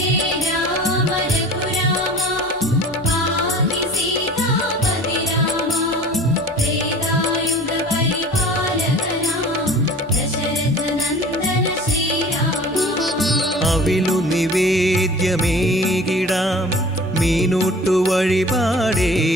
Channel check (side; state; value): both; normal; correlation 0.43